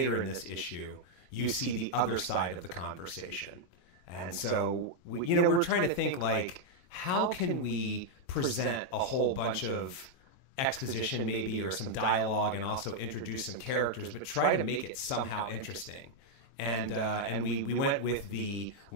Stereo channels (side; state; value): right; late; 22 ms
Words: in this issue, you see the other side of the conversation. And so, we're trying to think, like, how can we present a whole bunch of exposition maybe, or some dialogue, and also introduce some characters, but try to make it somehow interesting. And we went with the